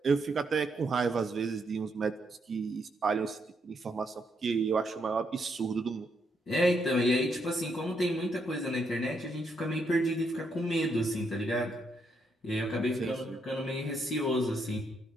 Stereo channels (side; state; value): both; normal; correlation 0.77